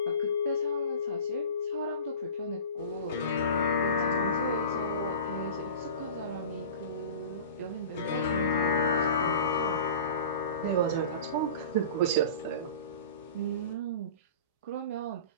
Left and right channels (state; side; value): inverted; both; correlation -0.36